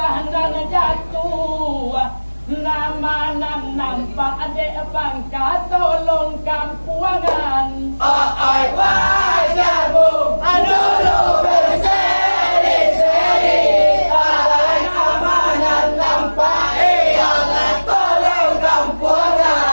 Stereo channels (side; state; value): both; inverted; correlation -1.00